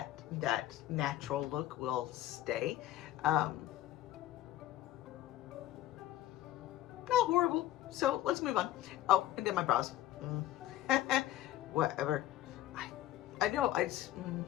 that natural look will stay. Not horrible. So let's move on. Oh, and then my brows. Whatever. I know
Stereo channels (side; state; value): right; quieter; 13.7 dB